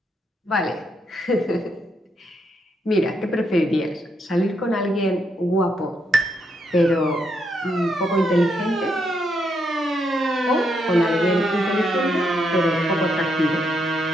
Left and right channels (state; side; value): normal; both; correlation 0.78